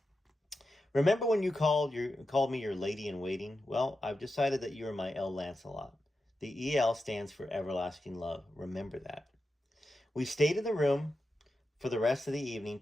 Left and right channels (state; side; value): normal; both; correlation 0.90